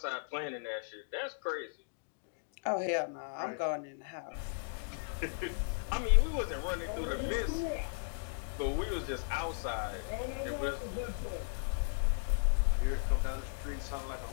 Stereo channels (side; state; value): right; silent; digital silence